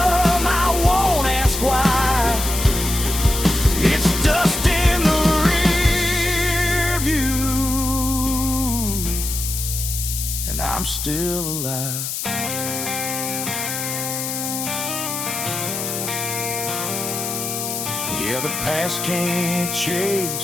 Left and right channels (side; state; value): left; noise; hiss, 4 dB below the sound